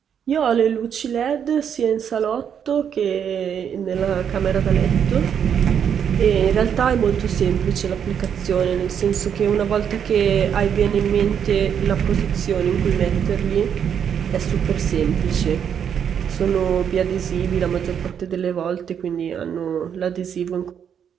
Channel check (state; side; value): quieter; left; 8.2 dB